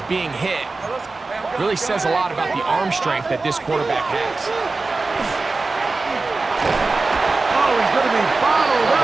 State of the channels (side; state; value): left; quieter; 3.7 dB